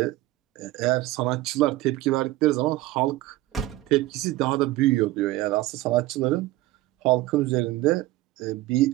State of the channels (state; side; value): quieter; left; 17.1 dB